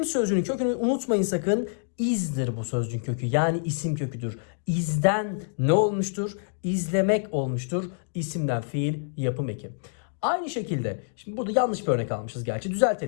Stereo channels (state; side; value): silent; right; digital silence